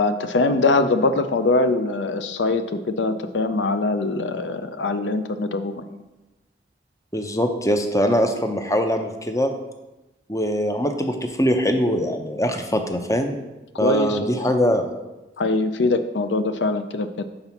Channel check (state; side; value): normal; both; correlation 0.35